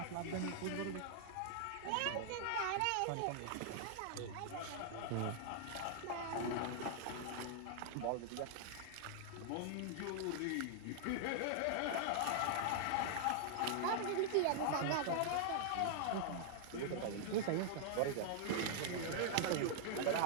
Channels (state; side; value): different; both; correlation -0.01